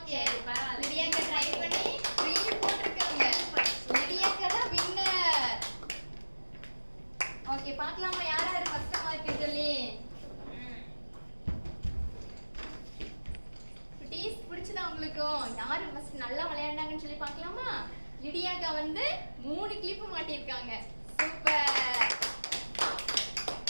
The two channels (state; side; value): inverted; both; correlation -1.00